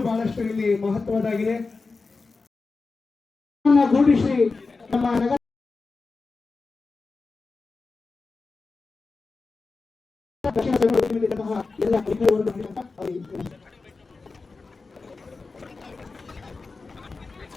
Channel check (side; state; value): right; quieter; 4.1 dB